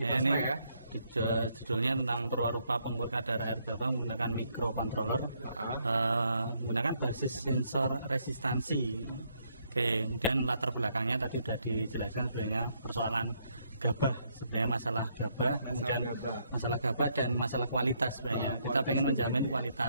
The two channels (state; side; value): inverted; both; correlation -0.73